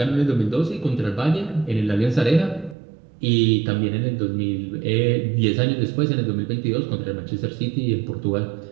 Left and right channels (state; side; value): drops out; left; at 2.8 s